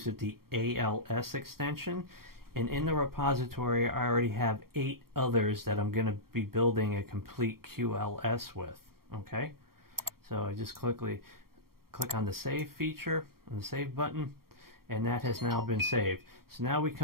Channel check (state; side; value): late; left; 0.93 ms